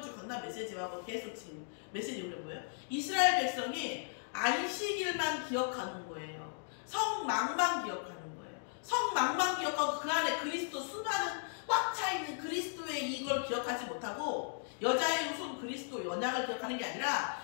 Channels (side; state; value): right; silent; digital silence